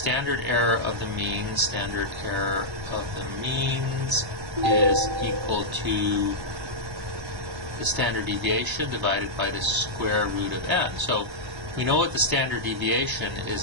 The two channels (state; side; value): late; left; 1.2 ms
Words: standard error of the means, is equal to the standard deviation divided by the square root of n. So we know what the standard deviation is